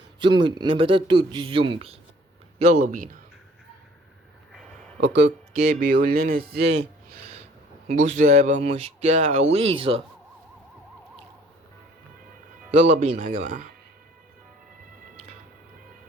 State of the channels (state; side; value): normal; both; correlation 0.56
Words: زومبي نباتات توت الزومبي. يلا بينا. اوكي بيقول لنا ازاي. بصوا هيبقى مشكلة عويصة. يلا بينا يا جماعة.